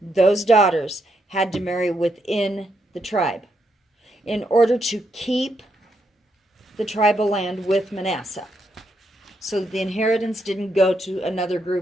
those daughters, had to marry within the tribe in order to keep the tribal land with Manasseh, so that the inheritance didn't go to another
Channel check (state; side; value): normal; both; correlation 0.79